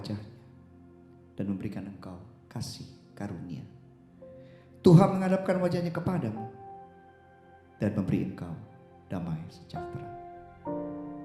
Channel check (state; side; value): identical; both; correlation 1.00